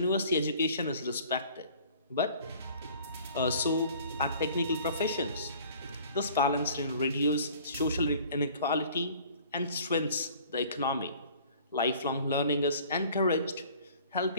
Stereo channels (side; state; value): both; inverted; correlation -0.51